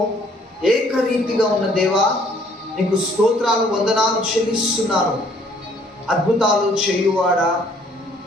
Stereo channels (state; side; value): normal; both; correlation 0.61